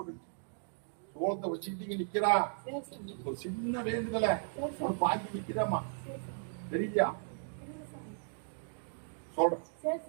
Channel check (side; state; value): left; silent; digital silence